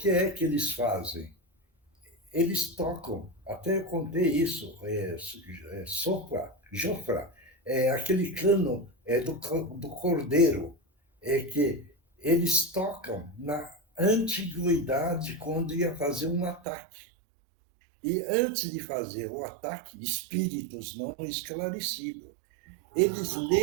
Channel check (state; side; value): drops out; left; at 16.6 s